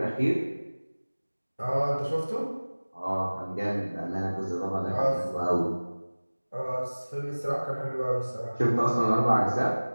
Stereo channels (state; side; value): inverted; both; correlation -1.00